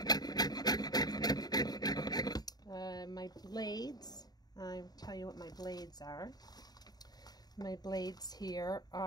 My blades, I'll tell you what my blades are. My blades here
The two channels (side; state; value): right; late; 0.19 ms